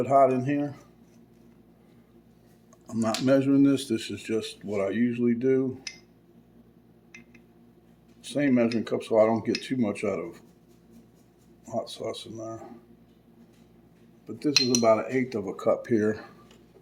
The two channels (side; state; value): both; identical; correlation 1.00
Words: Hot in here. I'm not measuring this. This is just what I usually do. Same measuring cup so I don't get too much out of hot sauce in there. But this is about 1/8 cup here.